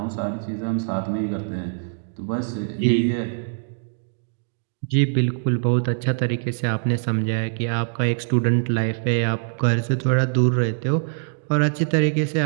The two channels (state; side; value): silent; left; digital silence